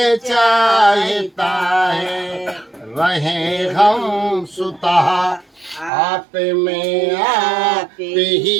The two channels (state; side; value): drops out; left; at 5.9 s